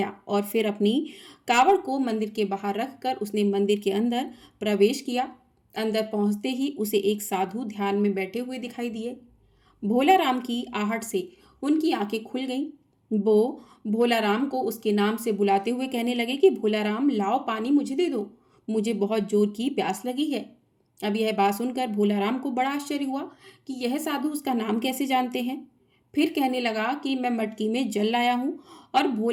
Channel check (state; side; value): identical; both; correlation 1.00